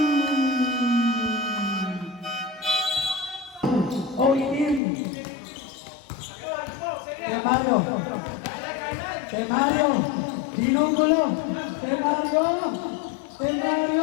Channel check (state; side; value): drops out; right; at 4.8 s